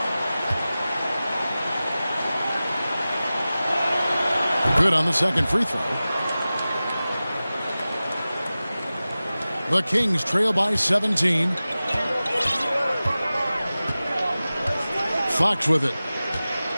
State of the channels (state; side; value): inverted; both; correlation -0.96